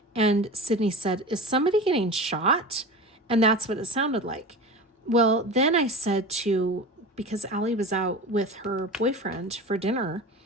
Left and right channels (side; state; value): both; normal; correlation 0.31